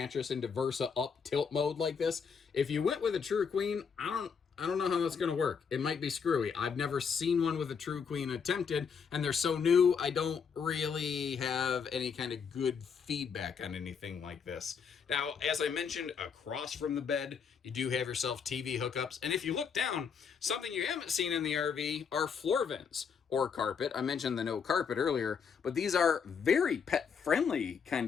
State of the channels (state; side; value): quieter; right; 6.4 dB